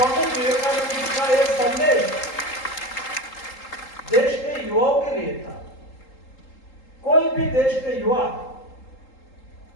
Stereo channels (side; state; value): right; late; 3.8 ms